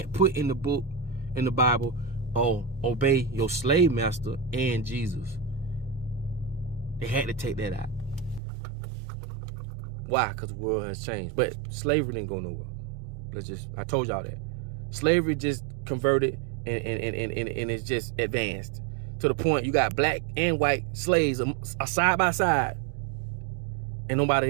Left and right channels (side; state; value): left; drops out; at 8.4 s